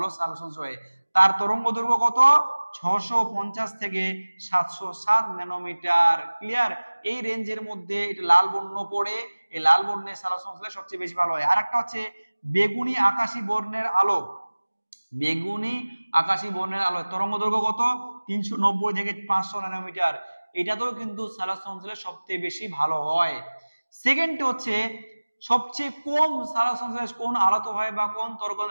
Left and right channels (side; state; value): both; inverted; correlation -1.00